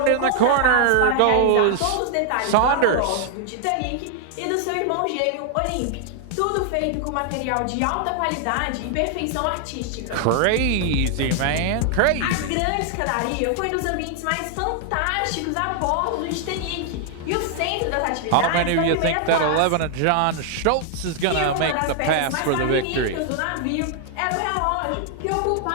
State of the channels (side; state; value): both; different; correlation 0.00